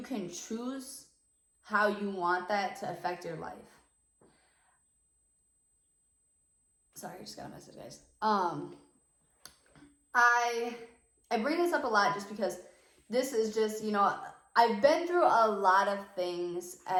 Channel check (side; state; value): both; identical; correlation 1.00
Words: can choose how you want that to affect your life. Sorry, I just got a message, guys. I bring this up a lot just because this is just, you know, I've been through a lot of things